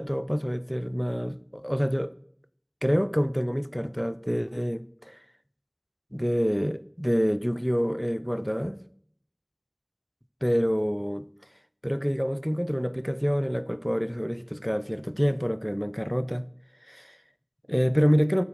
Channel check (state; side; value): identical; both; correlation 1.00